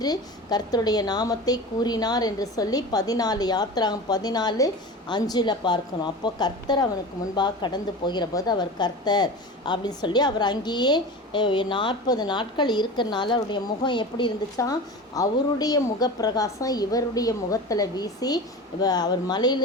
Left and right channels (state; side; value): normal; both; correlation 0.31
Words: கர்த்தருடைய நாமத்தை கூறினார் என்று சொல்லி 14 யாத்ராகம் 14:5 பார்க்கணும். அப்போ கர்த்தர் அவனுக்கு முன்பாக கடந்து போகிற போது அவர் கர்த்தர் அப்படின்னு சொல்லி அவர் அங்கேயே 40 நாட்கள் இருக்கிறனால அவருடைய முகம் எப்படி இருந்துச்சான், அவருடைய முகப்பிரகாசம் இவருடைய முகத்தில் வீசி அவர்